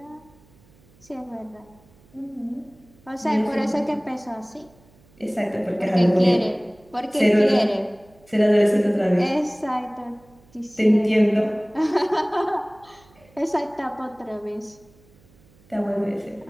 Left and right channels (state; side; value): noise; right; hum, 29 dB below the sound